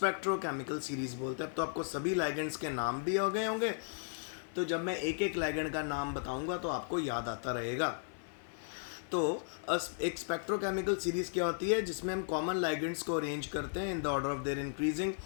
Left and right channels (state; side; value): silent; right; 54 dB below the other